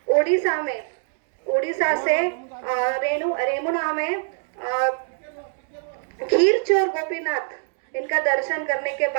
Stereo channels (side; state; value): left; silent; digital silence